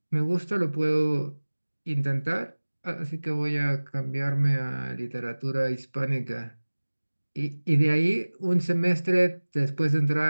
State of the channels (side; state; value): both; inverted; correlation -1.00